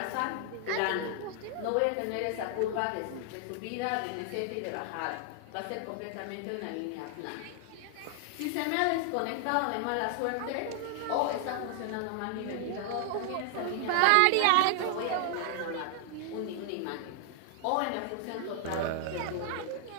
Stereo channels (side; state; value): both; different; correlation 0.00